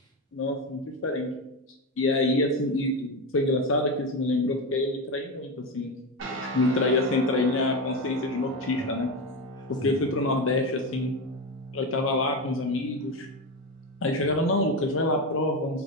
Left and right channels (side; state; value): both; normal; correlation 0.16